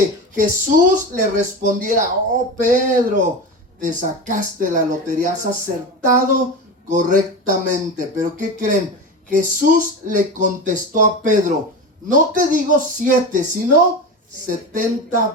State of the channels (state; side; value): normal; both; correlation 0.24